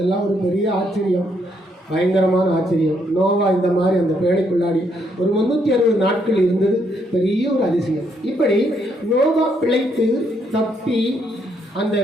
ஒரு பெரிய ஆச்சரியம், பயங்கரமான ஆச்சரியம். நோவா இந்த மாதிரி அந்த பேழைக்குள்ளாடி ஒரு 360 நாட்கள் இருந்தது, பெரிய ஒரு அதிசயம். இப்படி நோவா பிழைத்து தப்பி அந்த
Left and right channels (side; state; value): both; normal; correlation 0.73